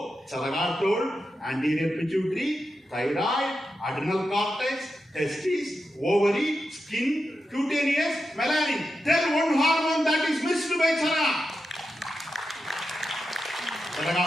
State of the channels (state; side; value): normal; both; correlation 0.89